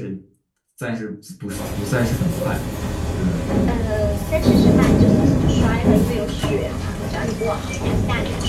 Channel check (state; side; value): identical; both; correlation 1.00